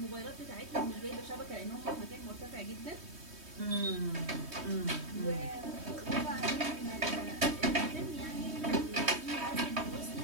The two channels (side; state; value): left; late; 3.2 ms